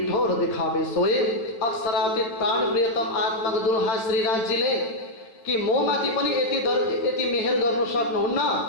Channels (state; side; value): late; right; 8.9 ms